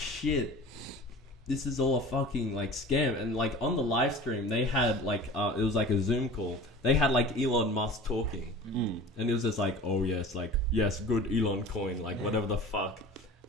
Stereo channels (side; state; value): both; normal; correlation 0.39